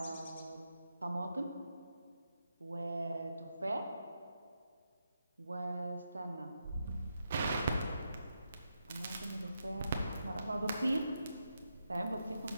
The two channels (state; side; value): inverted; both; correlation -0.84